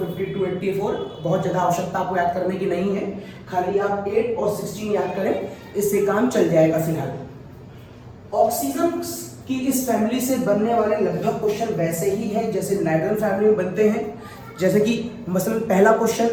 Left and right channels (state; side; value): identical; both; correlation 1.00